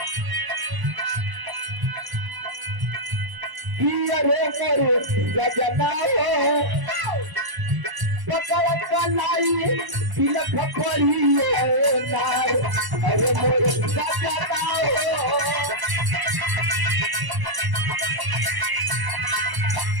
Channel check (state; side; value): late; left; 1.0 ms